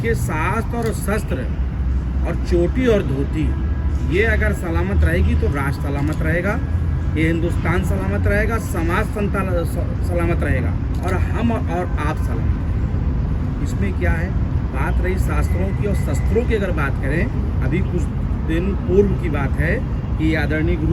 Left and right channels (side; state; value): both; identical; correlation 1.00